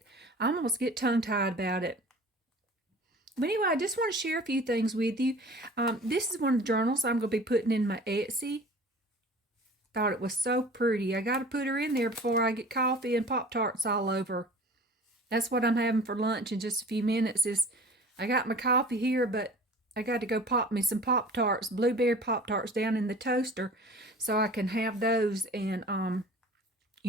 almost get tongue tied about it. But anyway, I just want to share a few things with you. This is one of the journals I'm going to be putting in my Etsy. Thought it was so pretty. I got to put her in there before I get coffee and Pop-Tarts all over. That's what I'm having for lunch in just a few minutes. I got my coffee here, but I got to go pop me some Pop-Tarts, blueberry Pop-Tarts down in the toaster so I can have those. And, I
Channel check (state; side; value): normal; both; correlation 0.43